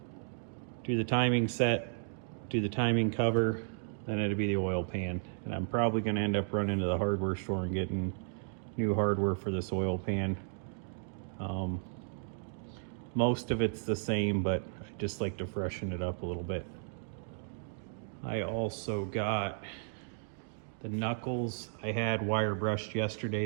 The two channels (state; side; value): silent; left; digital silence